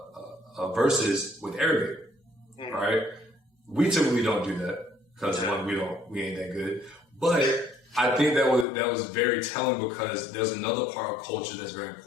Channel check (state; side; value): drops out; right; at 8.7 s